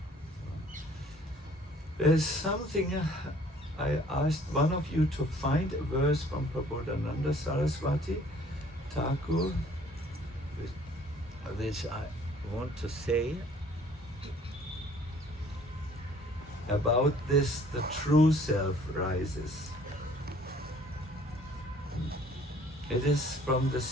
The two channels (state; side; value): normal; both; correlation 0.56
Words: There's something, I asked one of you to find a verse from Prabhupada Saraswati, Thakur, which I want to say about this, the true self rises. It is from the